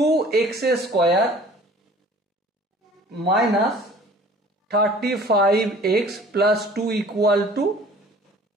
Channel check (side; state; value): both; normal; correlation 0.49